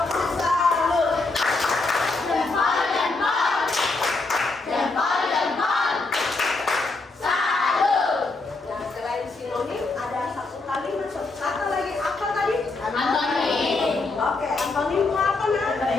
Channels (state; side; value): quieter; right; 3.5 dB